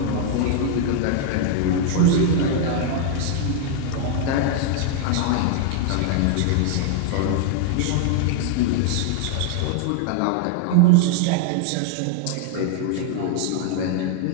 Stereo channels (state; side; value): different; both; correlation 0.00